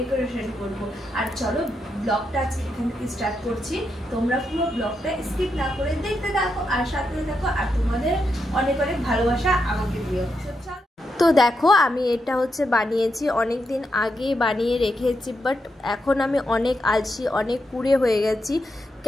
করব। আর চলো ব্লগটা আজকে এখান থেকে স্টার্ট করছি। তোমরা পুরো ব্লগটা স্কিপ না করে দেখতে থাকো আর সাথে থাকো, আর তোমাদের অনেক অনেক ভালোবাসা আমাকে দিও। তো দেখো আমি এটা বানিয়েছি, অনেক দিন আগে বানিয়ে রেখেছি, বাট এখন আমি অনেক আলসি, অনেক কুড়ে হয়ে গেছি।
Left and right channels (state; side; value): normal; both; correlation 0.83